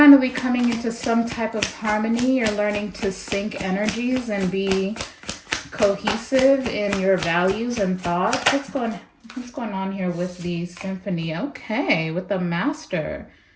coming into some type of harmony. You're learning to sync energies and be cohesive in your values and thoughts. What's going on here with the symphony? Okay, with the master.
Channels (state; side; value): identical; both; correlation 1.00